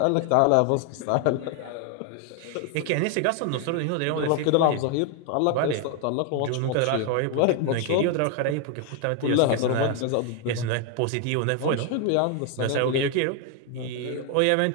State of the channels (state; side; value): different; both; correlation 0.00